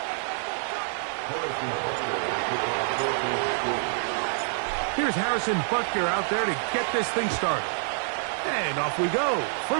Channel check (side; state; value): left; silent; 59 dB below the other